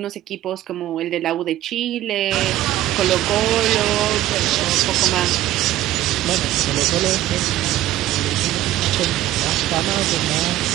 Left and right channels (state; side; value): quieter; left; 14.0 dB